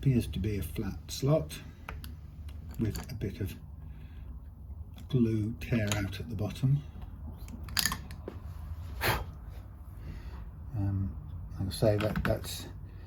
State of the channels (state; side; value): identical; both; correlation 1.00